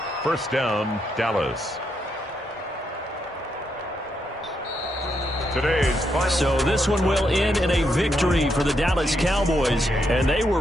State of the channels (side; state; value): both; normal; correlation 0.79